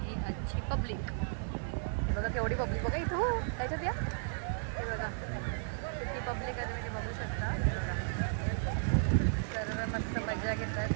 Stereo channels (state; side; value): silent; left; digital silence